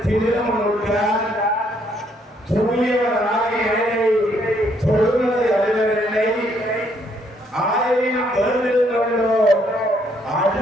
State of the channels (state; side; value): normal; both; correlation 0.69